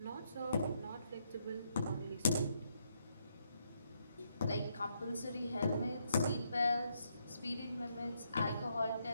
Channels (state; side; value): inverted; both; correlation -0.76